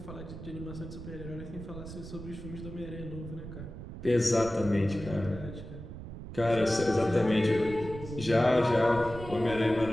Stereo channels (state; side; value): noise; right; rumble, 11 dB below the sound